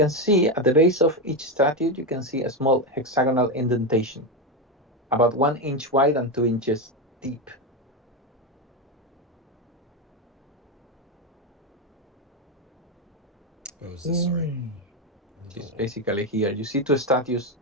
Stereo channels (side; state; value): both; normal; correlation 0.11